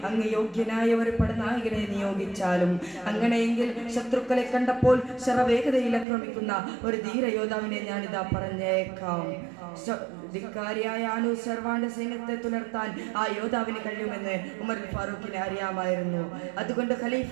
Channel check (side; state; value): left; drops out; at 6.1 s